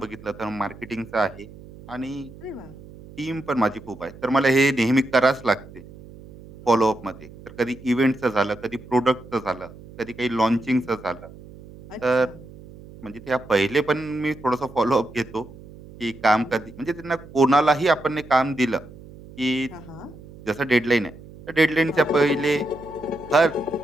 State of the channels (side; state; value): right; noise; hum, 18 dB below the sound